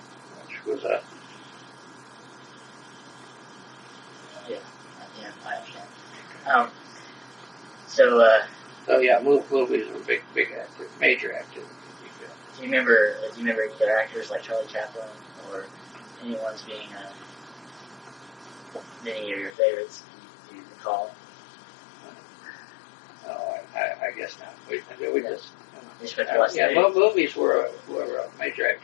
which was a I understand. So yeah, movies were major activity. Do you remember either actors like Charlie Chaplin or anyone's being any of your favorites? Do you recall? No, I guess not. We just movies were a major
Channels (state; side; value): drops out; right; at 19.5 s